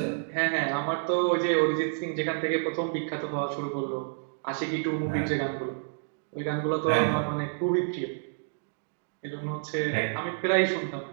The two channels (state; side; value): silent; left; digital silence